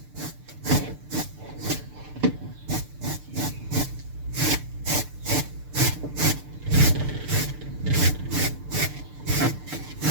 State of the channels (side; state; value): left; late; 6.7 ms